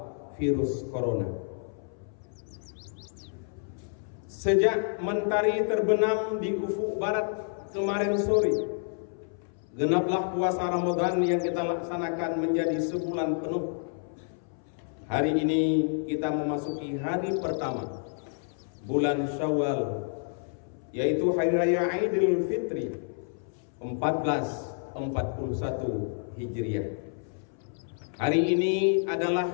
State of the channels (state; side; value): silent; right; 58 dB below the other